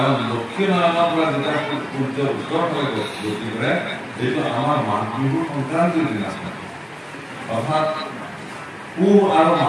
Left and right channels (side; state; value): both; identical; correlation 1.00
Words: দক্ষিণ আয়নৰ পৰা যেতিয়া সূৰ্য উত্তৰ ফালে গতি কৰে, এইটো আমাৰ মাঘ বিহুৰ সংক্ৰান্তিৰ দিনাখন, অৰ্থাৎ পুহ আৰু